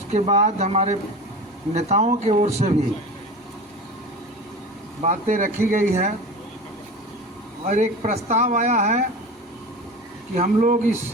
बाद हमारे नेताओं की ओर से भी बातें रखी गई है और एक प्रस्ताव आया है कि हम लोग इस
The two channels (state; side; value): normal; both; correlation 0.32